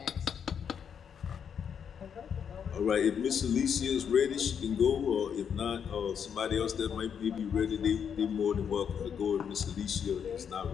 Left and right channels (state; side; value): quieter; right; 7.6 dB